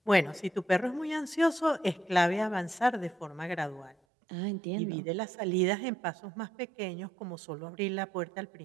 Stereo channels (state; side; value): drops out; left; at 4.0 s